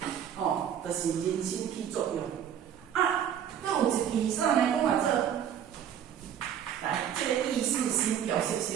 吼，就是人心起作用。啊，搁有一句啥呢？讲话做，来，这个意识心、表示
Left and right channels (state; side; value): quieter; left; 9.2 dB